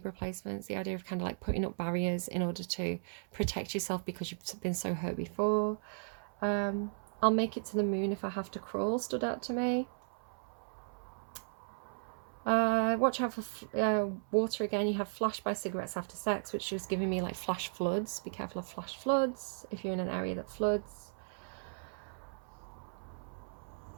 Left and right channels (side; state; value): left; silent; 54 dB below the other